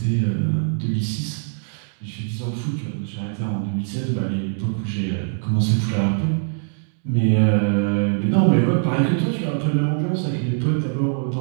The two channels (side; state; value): left; silent; digital silence